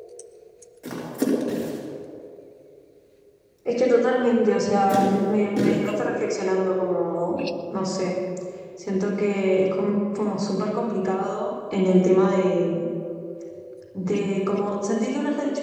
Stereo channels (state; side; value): identical; both; correlation 1.00